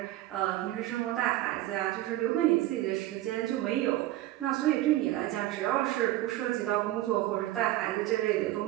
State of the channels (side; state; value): left; quieter; 15.5 dB